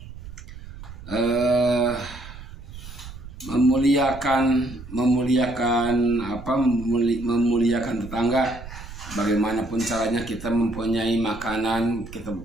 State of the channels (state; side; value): noise; right; rumble, 14 dB below the sound